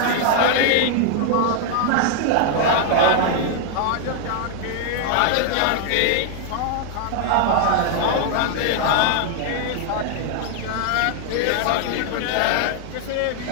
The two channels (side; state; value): both; different; correlation 0.00